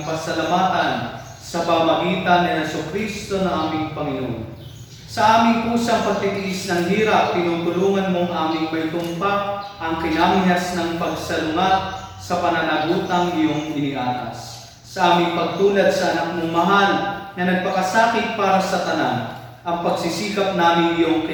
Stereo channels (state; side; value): identical; both; correlation 1.00